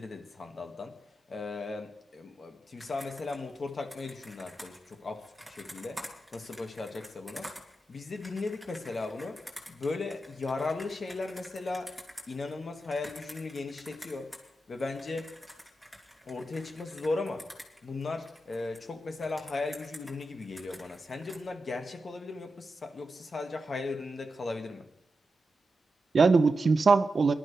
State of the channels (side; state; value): both; normal; correlation 0.89